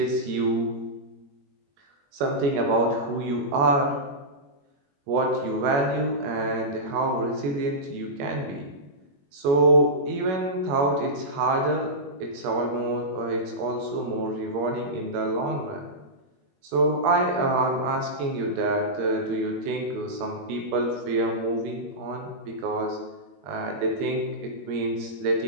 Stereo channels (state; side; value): late; left; 21 ms